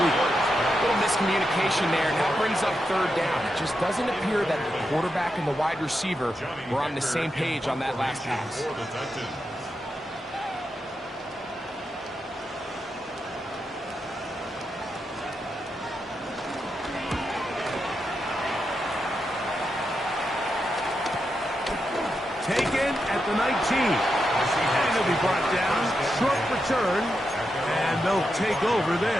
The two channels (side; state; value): both; normal; correlation 0.86